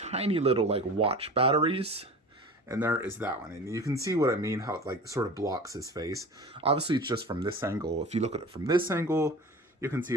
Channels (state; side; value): normal; both; correlation 0.37